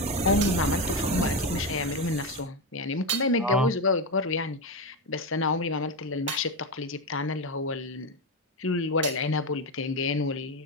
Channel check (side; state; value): both; normal; correlation 0.12